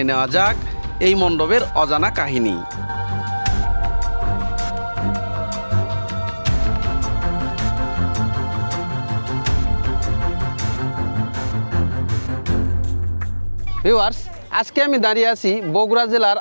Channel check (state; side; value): inverted; both; correlation -1.00